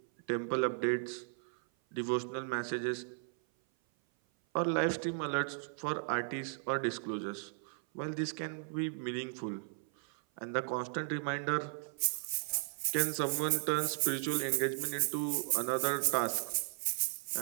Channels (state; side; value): silent; left; 54 dB below the other